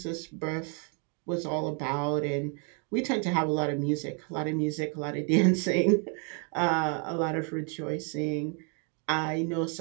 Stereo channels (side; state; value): left; quieter; 39.5 dB